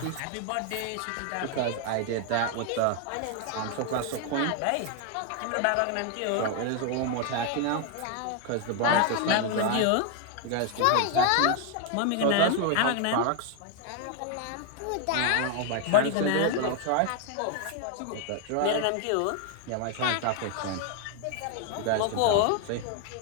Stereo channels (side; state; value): both; different; correlation 0.00